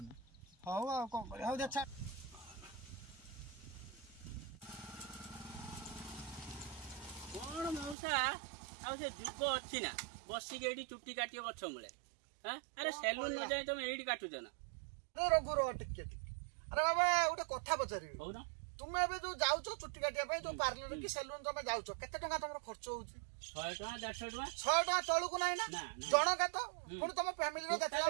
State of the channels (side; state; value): left; drops out; at 8.0 s